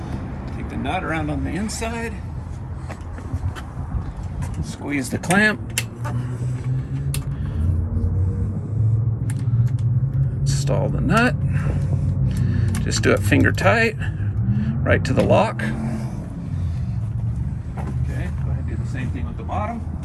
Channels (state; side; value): identical; both; correlation 1.00